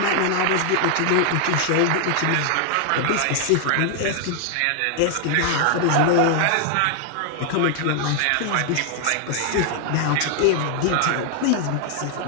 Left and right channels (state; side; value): different; both; correlation 0.00